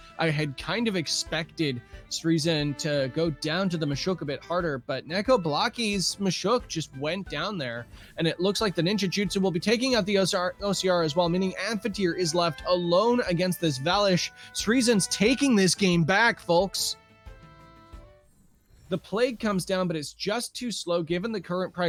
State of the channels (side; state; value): both; identical; correlation 1.00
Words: I had kind of expected Sryzen to go down to the Mashuk a bit harder, but Nekoblakii's Mashuk just went down there, and it looks like the Ninja Jutsu will be taking out the OCR as well, meaning Amphitheater is left alone against this Valish. Sryzen's taking this game back, folks. The Plague comes down, but it's just too slow given the current